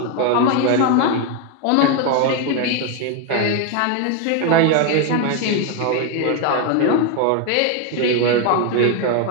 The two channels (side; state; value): both; different; correlation 0.01